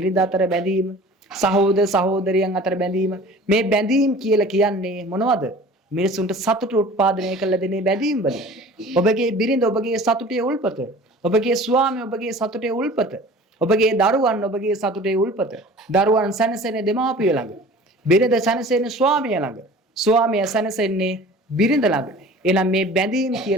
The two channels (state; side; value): normal; both; correlation 0.43